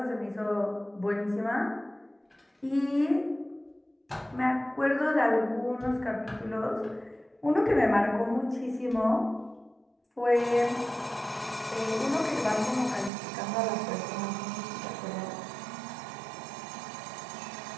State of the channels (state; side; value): drops out; left; at 13.1 s